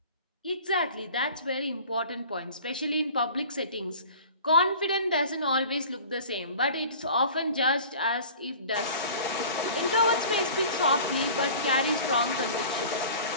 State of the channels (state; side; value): inverted; both; correlation -0.43